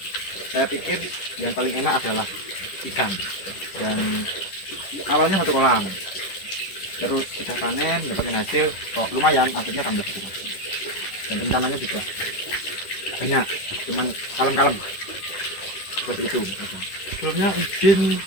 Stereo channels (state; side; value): late; right; 10 ms